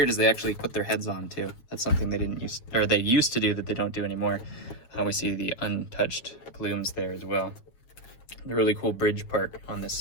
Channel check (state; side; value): late; right; 7.1 ms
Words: is they actually put their heads on too. That's something they used to do that they don't do anymore. We see the untouched plumes there as well. The really cool bridge part on this